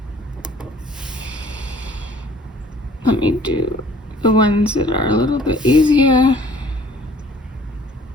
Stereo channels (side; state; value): both; normal; correlation 0.55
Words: let me do the ones that are a little bit easier.